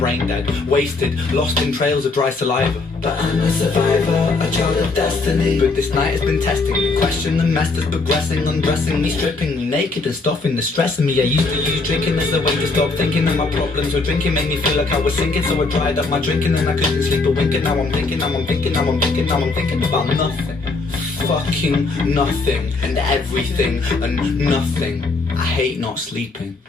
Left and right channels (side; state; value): right; quieter; 3.7 dB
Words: dead, wasted, lost in trails of dry saliva. But I'm a survivor, a child of destiny. But this night has been testing me, question the mess that's progressing, undressing me, stripping me naked and stuffing the stressing me. I used to use drinking as a way to stop thinking of my problems, or drinking made me feel like I was sinking, so I dried up my drinking and I couldn't sleep a wink. And now I'm thinking, now I'm thinking, now I'm thinking, now I'm thinking about nothing. Fucking nothing and everything and nothing. I hate not sleeping,